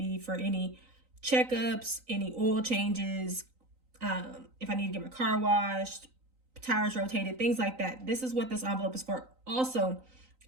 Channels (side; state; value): left; late; 3.9 ms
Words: for any checkups, any oil changes, if I need to get my car washed, tires rotated, things like that. This is what this envelope is for. Also,